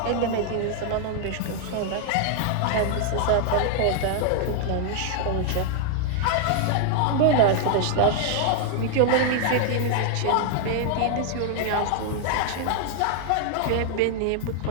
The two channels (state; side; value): different; both; correlation 0.00